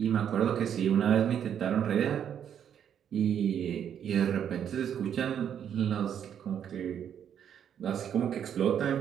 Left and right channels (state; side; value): quieter; left; 8.9 dB